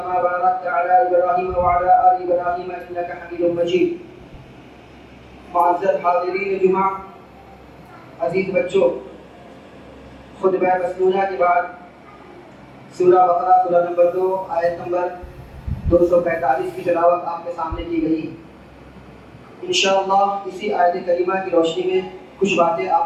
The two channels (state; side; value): identical; both; correlation 1.00